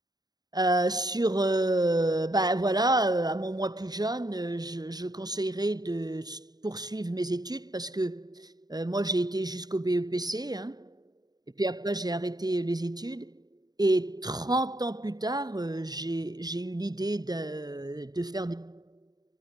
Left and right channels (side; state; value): left; late; 0.19 ms